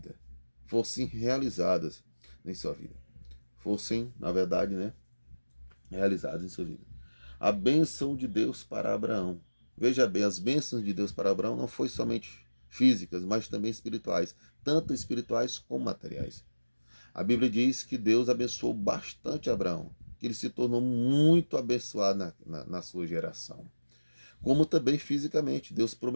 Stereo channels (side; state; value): both; inverted; correlation -1.00